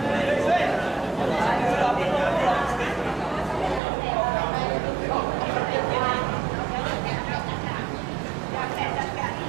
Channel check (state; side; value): drops out; left; at 3.8 s